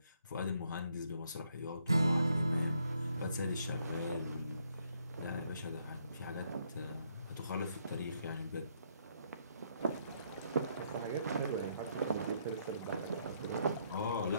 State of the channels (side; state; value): both; inverted; correlation -0.72